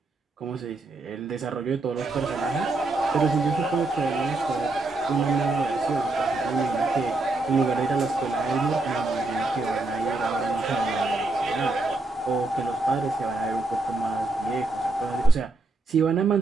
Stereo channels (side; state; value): left; quieter; 3.3 dB